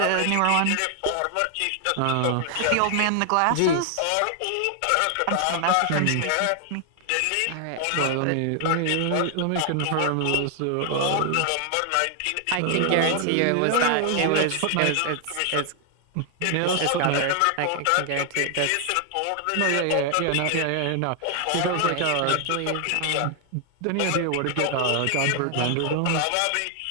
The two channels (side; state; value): both; different; correlation 0.00